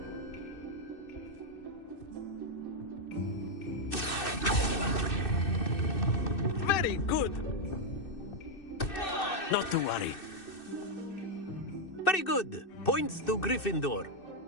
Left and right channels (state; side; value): late; right; 2.6 ms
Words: Very good. Not to worry. Very good. Points to Gryffindor.